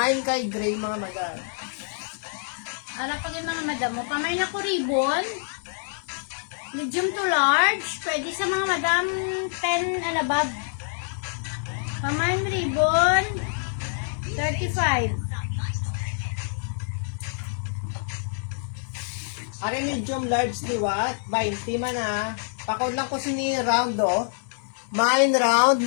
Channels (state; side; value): silent; right; 61 dB below the other